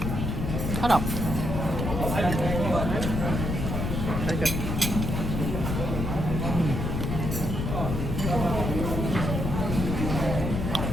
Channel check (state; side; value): noise; left; rumble, 2 dB below the sound